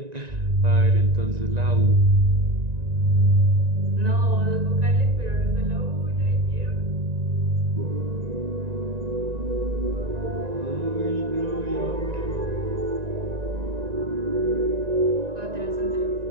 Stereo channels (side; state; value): left; late; 1.9 ms